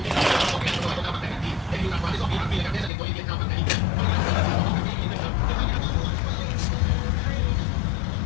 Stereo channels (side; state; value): right; drops out; at 2.9 s